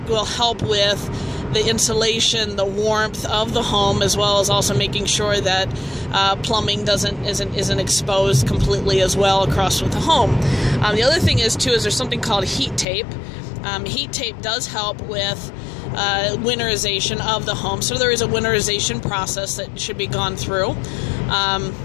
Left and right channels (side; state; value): right; drops out; at 12.9 s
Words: will help with the insulation, the warmth of the home, as well as also making sure that plumbing isn't exposed completely as well across with the home. The other thing is there's something called heat tape. Heat tape does help with winterization of the home. So there is a winterization process that should be gone through.